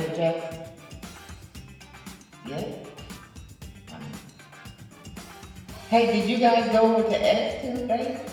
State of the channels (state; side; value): identical; both; correlation 1.00